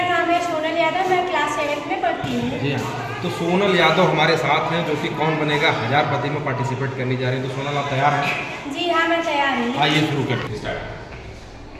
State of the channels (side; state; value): both; identical; correlation 1.00